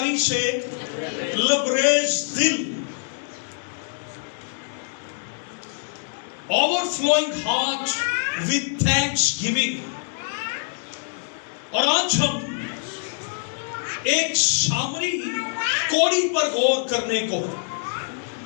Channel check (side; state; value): right; silent; digital silence